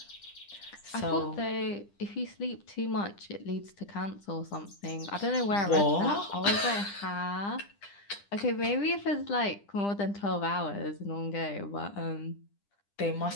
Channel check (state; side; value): late; right; 10 ms